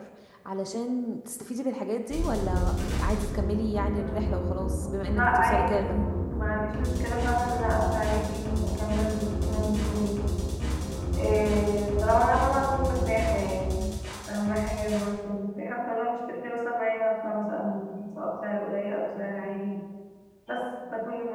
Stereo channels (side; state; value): both; identical; correlation 1.00